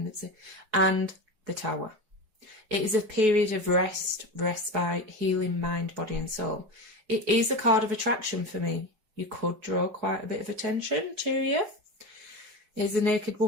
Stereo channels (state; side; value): late; left; 5.1 ms